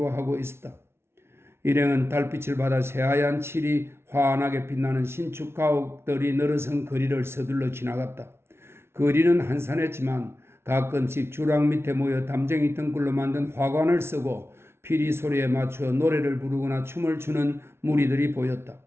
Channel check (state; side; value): late; left; 0.12 ms